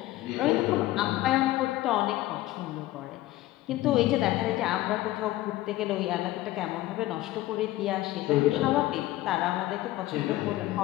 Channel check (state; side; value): quieter; right; 16.3 dB